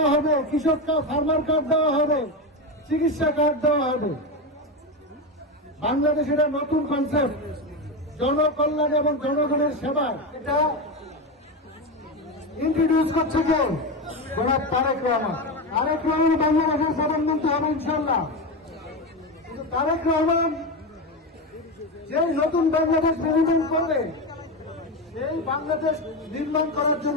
হবে, কৃষক ফার্মার কার্ড দেওয়া হবে, চিকিৎসা কার্ড দেওয়া হবে। বাংলাদেশ এটা নতুন কনসেপ্ট, জনকল্যাণ এবং জনগণের সেবা। এটা ইন্ট্রোডিউস করছে কে? জনাব তারেক রহমান। তারেক রহমান বাংলাদেশের প্রধানমন্ত্রী হবে ইনশাল্লাহ। কিন্তু তারেক রহমান যে নতুন বাংলাদেশ নির্মাণ করবে, সেই বাংলাদেশ নির্মাণ করার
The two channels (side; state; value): both; normal; correlation 0.15